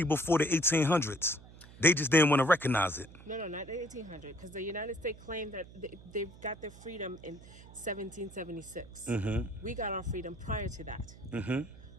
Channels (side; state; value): right; noise; hum, 19 dB below the sound